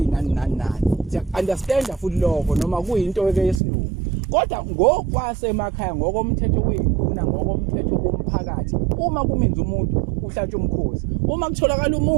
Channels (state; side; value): drops out; left; at 3.6 s